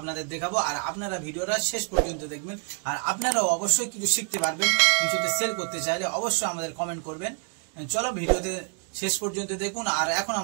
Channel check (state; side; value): quieter; left; 39.7 dB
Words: দেখাবো। আর আপনারা ভিডিওটা শেষ পর্যন্ত দেখবেন আর আপনারাও অবশ্যই কিছু শিখতে পারবেন। কিছুতে সেল করতে চাইলে অবশ্যই আমাদের কমেন্ট করবেন। চলো ভিডিওতে শেষ পর্যন্ত দেখুন। আর এখন